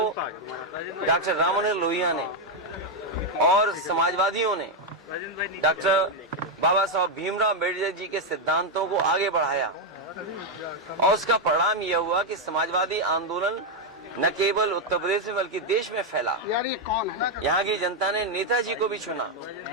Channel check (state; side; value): normal; both; correlation 0.02